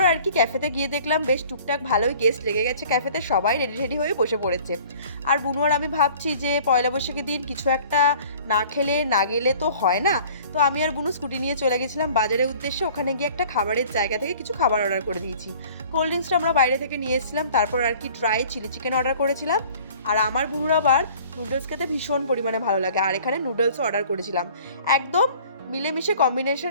কি ক্যাফেতে গিয়ে দেখলাম বেশ টুকটাক ভালোই গেস্ট লেগে গেছে ক্যাফেতে, সবাই রেডি হয়ে বসে পড়েছে। আর বুনু আর আমি ভাবছি যে পয়লা বৈশাখের দিন কিছু একটা না খেলে না গেলে তো হয় না। তো আমি আর বুনু স্কুটি নিয়ে চলে গেছিলাম বাজারের উদ্দেশ্যে। ওখানে গিয়ে একটা খাবারের জায়গা থেকে কিছু খাবার অর্ডার করে দিয়েছি। কোল্ড ড্রিঙ্কসটা আমরা বাইরে থেকে নিয়ে এসেছিলাম। তারপর আর কি ড্রাই চিলি চিকেন অর্ডার করেছিলাম। আর আমার বুনুর আবার নুডলস খেতে ভীষণ পরিমাণে ভালো লাগে, আর এখানে নুডলসও অর্ডার করেছিলাম। একদম মিলেমিশে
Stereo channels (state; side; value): inverted; both; correlation -0.50